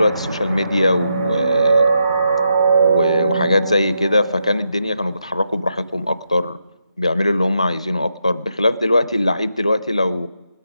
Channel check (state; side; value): inverted; both; correlation -0.82